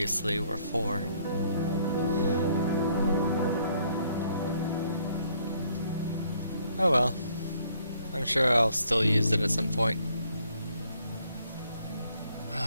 were 4. Oh well. I'm sure I'll still use it at some point.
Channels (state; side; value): inverted; both; correlation -0.66